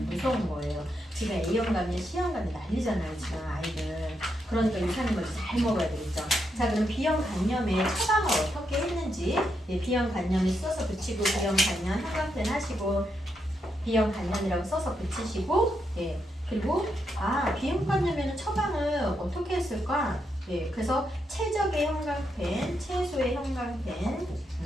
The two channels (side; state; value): both; normal; correlation 0.81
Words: 무서운 거예요. 지금 A형 간염, C형 간염 난리잖아요, 지금 아이들. 그러니까 유산균을 잘 먹어야 되겠죠. 자, 그럼 비형 간염의 처방을 어떻게 했는지, 비형 간염을 써서 붙이고 비형 간염 형광펜 하시고 비형 간염이라고 써서 붙이시고, 그리고 비형 간염에는 처방을 어떻게 했을까? 그래서 최적의 형광펜, 최소의 형광펜,